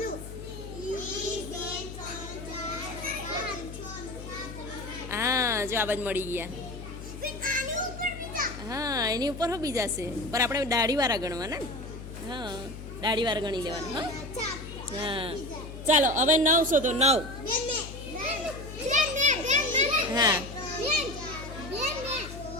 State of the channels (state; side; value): noise; left; hum, 11 dB below the sound